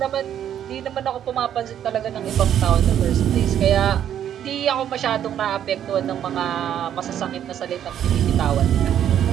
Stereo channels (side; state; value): left; quieter; 10.1 dB